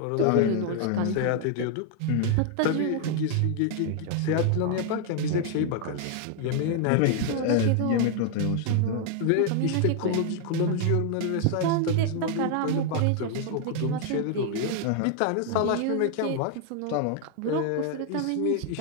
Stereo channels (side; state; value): both; different; correlation 0.00